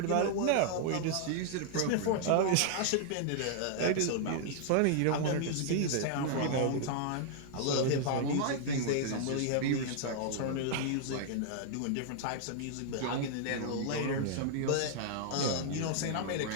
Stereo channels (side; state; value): both; different; correlation 0.00